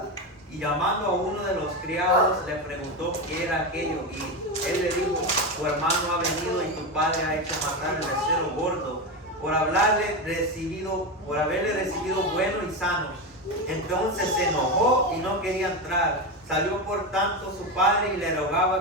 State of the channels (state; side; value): normal; both; correlation 0.15